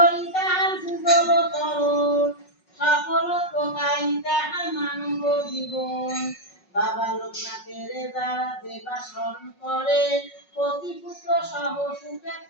তাহার যুগল তরণ সকল প্রকাই তাহার মানব জীবন। বাবা লোকনাথের যারা দেবা স্মরণ করে পতিপুত্র সহ সুখে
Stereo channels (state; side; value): late; right; 5.4 ms